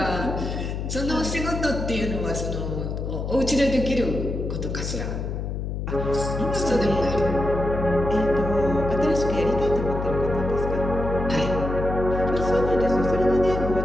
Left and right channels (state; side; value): noise; left; hum, 4 dB below the sound